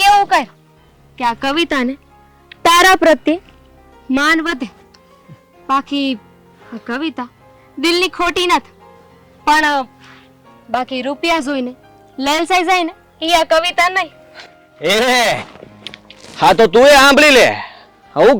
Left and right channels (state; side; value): identical; both; correlation 1.00